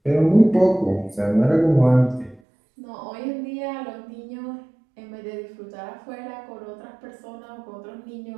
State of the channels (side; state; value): left; drops out; at 2.4 s